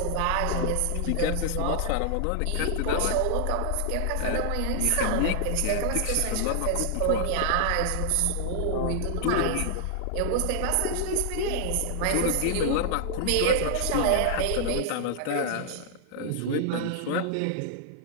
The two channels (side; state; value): both; different; correlation 0.00